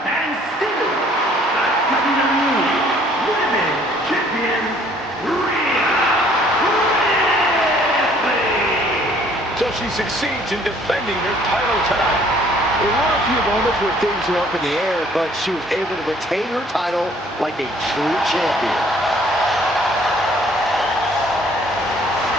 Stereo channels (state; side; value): normal; both; correlation 0.59